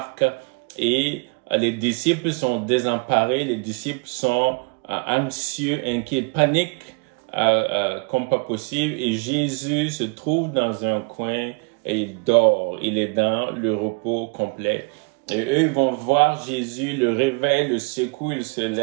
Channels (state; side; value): quieter; left; 30.8 dB